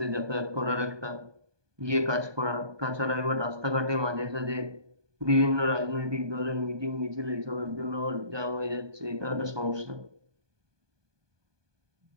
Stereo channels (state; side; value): late; left; 1.2 ms